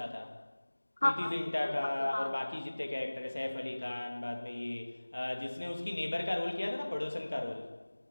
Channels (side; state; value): both; inverted; correlation -1.00